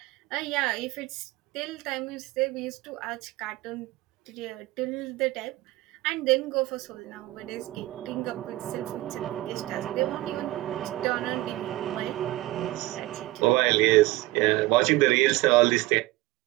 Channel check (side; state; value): left; quieter; 18.4 dB